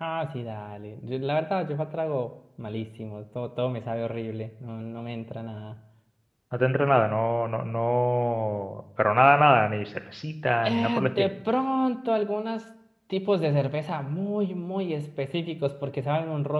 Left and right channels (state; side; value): identical; both; correlation 1.00